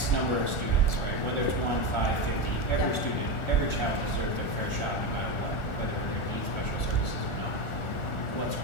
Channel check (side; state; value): right; late; 1.4 ms